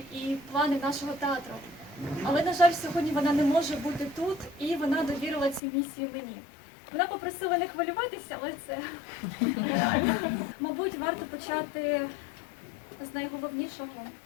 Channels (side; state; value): right; drops out; at 5.6 s